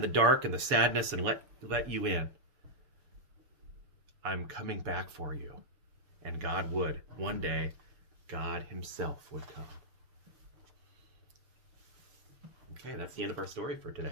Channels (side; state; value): left; late; 7.0 ms